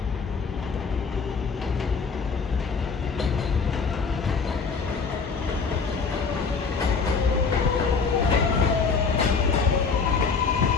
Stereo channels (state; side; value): quieter; right; 5.1 dB